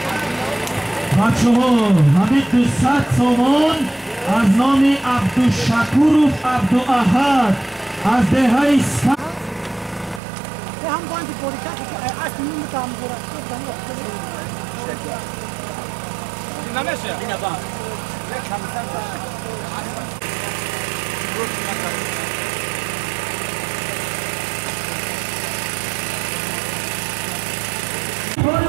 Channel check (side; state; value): left; drops out; at 10.2 s